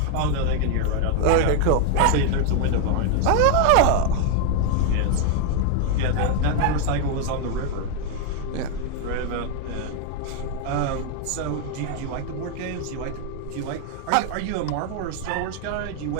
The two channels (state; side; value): different; both; correlation 0.01